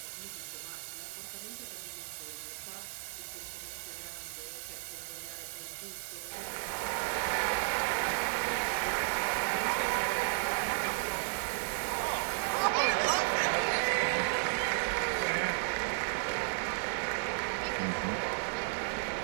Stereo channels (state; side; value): silent; left; digital silence